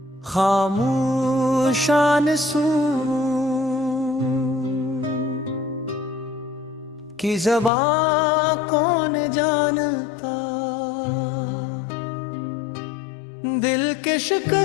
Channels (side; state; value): right; drops out; at 7.7 s